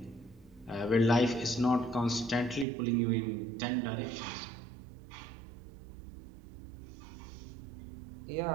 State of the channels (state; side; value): drops out; left; at 2.7 s